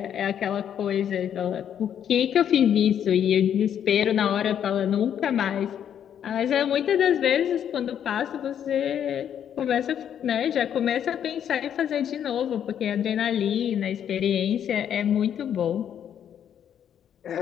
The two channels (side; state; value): right; quieter; 9.3 dB